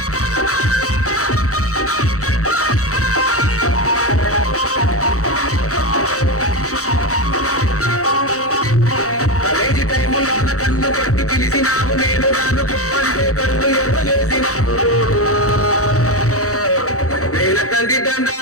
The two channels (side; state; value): right; late; 0.65 ms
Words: పిలిచినావు నేను రాను అంటే కళ్ళు ఎవ్వలేసినావు నేను తండ్రి